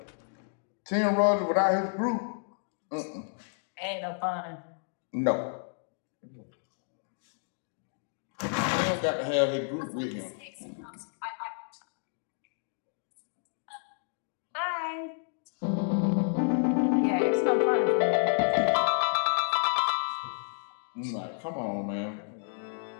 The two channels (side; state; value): right; silent; digital silence